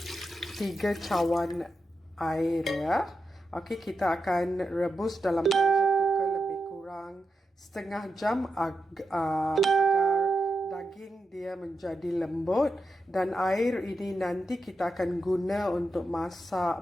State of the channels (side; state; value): both; normal; correlation 0.88